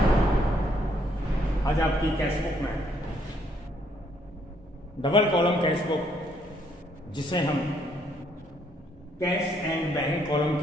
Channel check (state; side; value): normal; both; correlation 0.69